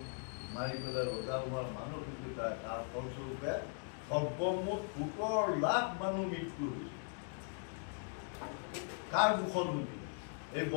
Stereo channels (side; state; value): right; silent; 52 dB below the other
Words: মাৰি পেলাই ৰজা হোৱাৰ মানসিকতা, তাৰ ফলস্বৰূপে সৰ্বমুঠ 17 লাখ মানুহ মৃত্যু হৈছে। কাৰ দুখত হৈছিল? এই